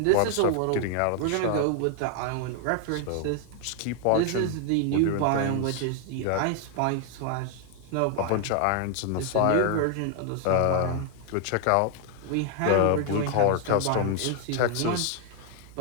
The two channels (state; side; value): different; both; correlation 0.00